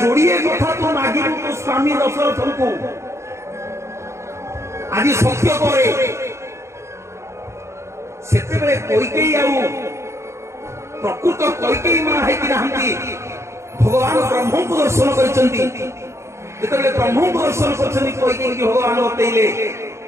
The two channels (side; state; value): left; late; 0.14 ms